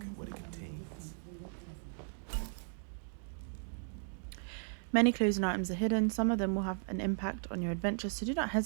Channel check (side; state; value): left; silent; digital silence